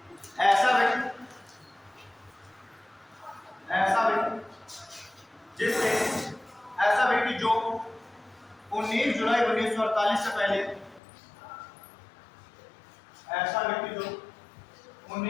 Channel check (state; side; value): drops out; right; at 11.0 s